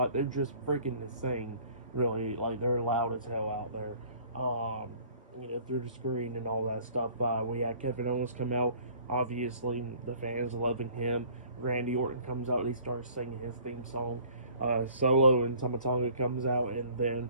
They're just freaking insane, really. Like, they're loud as hell out there. Through the screen and all that stuff. We had Kevin Owens come out. Obviously, the fans loving him. Randy Orton comes out and he starts singing his theme song. Solo and Tanga comes out, and then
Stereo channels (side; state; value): both; inverted; correlation -0.53